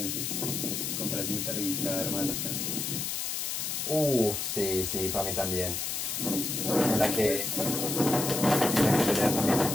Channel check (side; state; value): left; noise; hiss, 2 dB below the sound